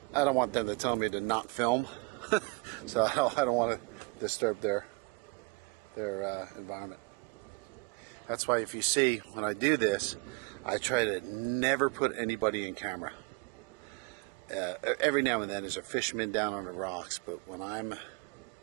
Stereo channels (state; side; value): quieter; left; 29.4 dB